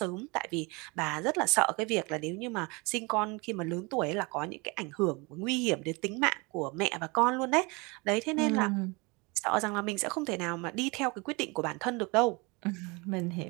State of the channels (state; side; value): quieter; left; 27.6 dB